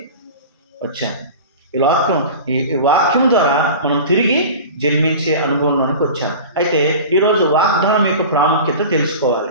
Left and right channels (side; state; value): both; inverted; correlation -0.35